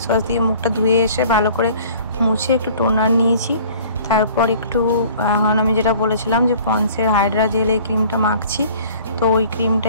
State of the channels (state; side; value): inverted; both; correlation -0.51